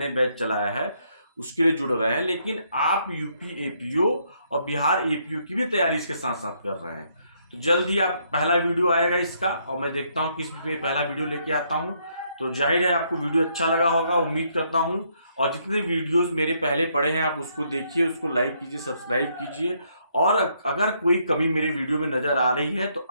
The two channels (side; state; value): both; inverted; correlation -0.72